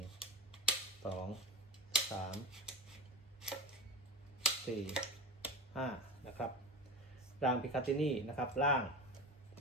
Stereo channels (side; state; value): both; normal; correlation 0.28